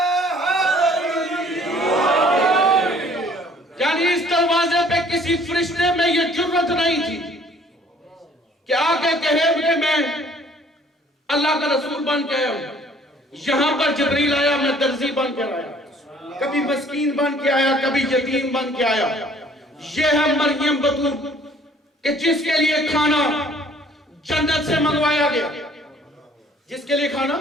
نہیں تھی کہ آگے کہے کہ میں اللہ کا رسول بن کے آیا ہوں. یہاں پر جبریل آیا, میں درزی بن کے آیا, کبھی مسکین بن کے آیا, کبھی یتیم بن کے آیا. یہ ہے مریم بطول کہ جس کے لیے کھانا جنت سے منگوایا گیا. جس کے لیے کھانا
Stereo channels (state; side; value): normal; both; correlation 0.57